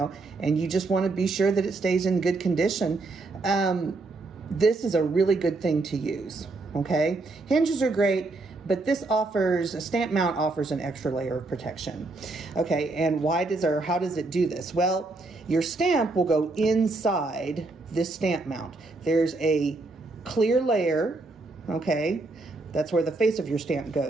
and you just want to be sure that it stays in good condition, this is a really good thing to use, okay? Hinges are great, but this offers, a stamp mount offers an extra layer of protection. Okay, and how does it do this? Well, your stamp will go inside this stamp mount. There's a clear layer, okay? That's where the face of your stamp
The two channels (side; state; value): left; quieter; 3.3 dB